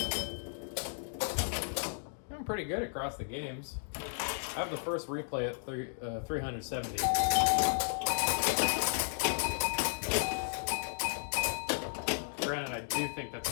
I'm pretty good across the games. I have the first replay at 370. Granted, I do think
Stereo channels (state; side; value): silent; right; digital silence